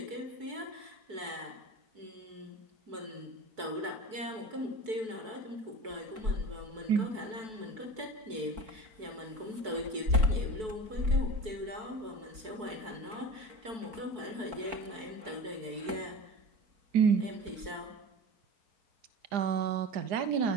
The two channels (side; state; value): left; late; 4.6 ms